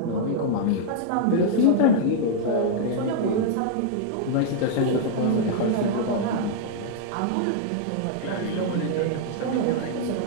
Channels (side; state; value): both; different; correlation -0.01